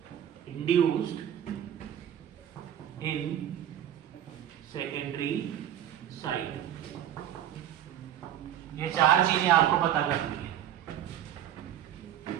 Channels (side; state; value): left; quieter; 10.9 dB